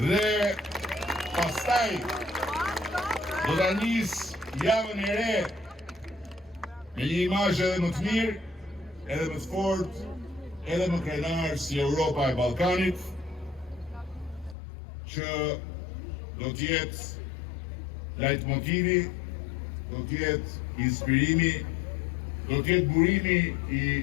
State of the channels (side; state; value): right; drops out; at 14.6 s